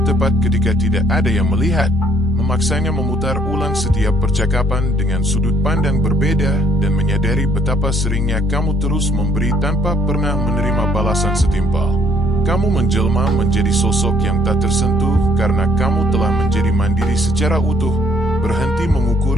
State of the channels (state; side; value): normal; both; correlation 0.65